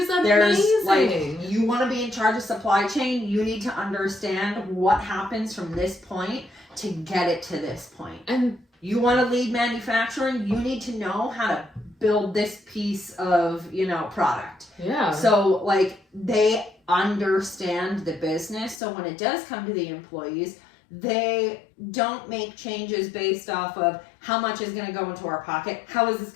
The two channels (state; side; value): drops out; right; at 18.8 s